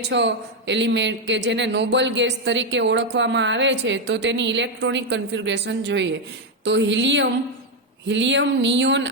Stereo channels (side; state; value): both; normal; correlation 0.04